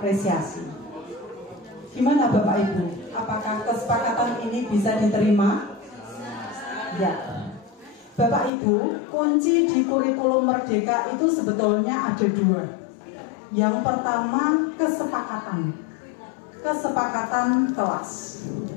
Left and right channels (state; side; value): drops out; right; at 8.5 s